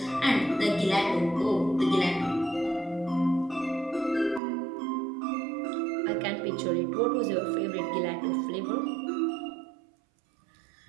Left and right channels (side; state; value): left; drops out; at 4.4 s